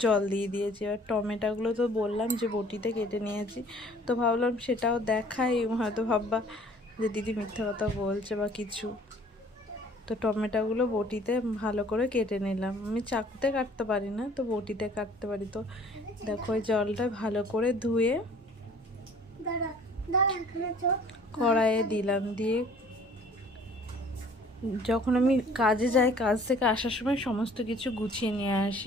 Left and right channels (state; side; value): normal; both; correlation 0.53